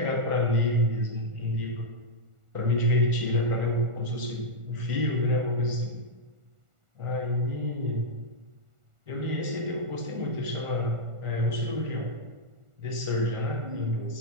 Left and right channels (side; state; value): left; late; 1.4 ms